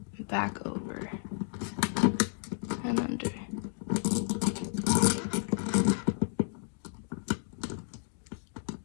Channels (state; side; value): silent; right; 56 dB below the other